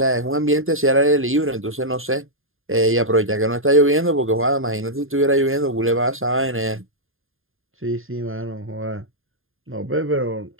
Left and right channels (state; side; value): late; left; 0.60 ms